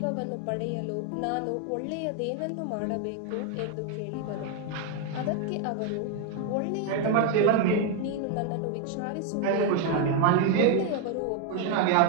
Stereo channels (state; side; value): different; both; correlation 0.01